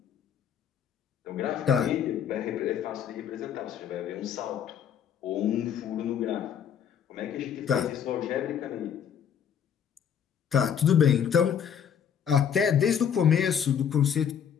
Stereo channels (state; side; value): quieter; right; 8.3 dB